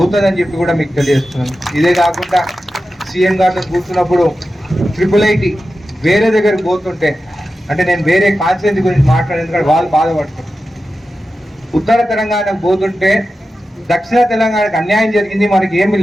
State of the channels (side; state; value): both; normal; correlation 0.92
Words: చెప్పి కూడా మీకు తెలియజేస్తున్నాను. ఇదే కాకుండా సీఎం గారితో కూర్చున్నప్పుడు IIIT వేరే దగ్గరికి పోతుంటే, అంటే నేను వేరే కాన్స్టిట్యూన్సీ గురించి మాట్లాడేందుకంటే వాళ్ళు బాధపడుతున్నారు. ఉత్తర తెలంగాణకు పోతుంటే దక్షిణ తెలంగాణకు అన్యాయం జరిగింది, మనకి ఏమి